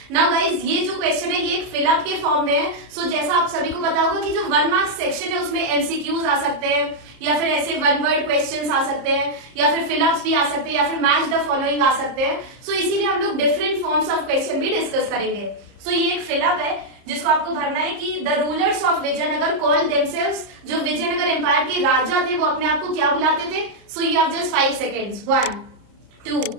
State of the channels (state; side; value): late; left; 30 ms